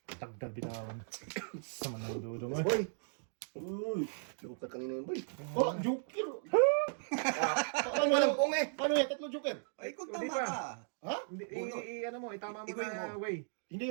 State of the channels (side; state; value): left; silent; digital silence